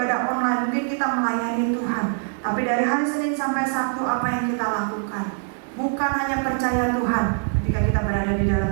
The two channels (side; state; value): left; silent; 63 dB below the other